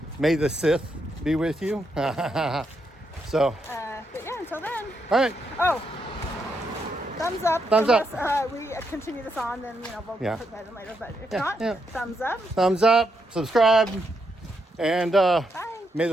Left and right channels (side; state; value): both; normal; correlation 0.80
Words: May the Sith be with you. So. But yeah, until then. All right. Oh. Thumbs up. Thumbs up. Unless we continue this on, then we'll put that in later. But if not, thumbs up. Thumbs up. Subscribe. And Bye. May